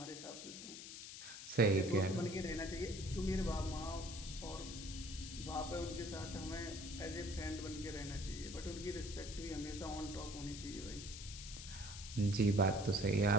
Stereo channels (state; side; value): noise; left; hiss, 10 dB below the sound